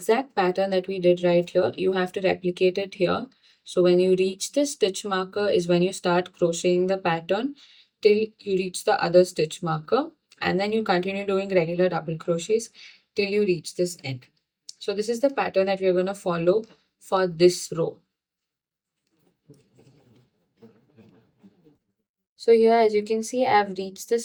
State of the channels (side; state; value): both; identical; correlation 1.00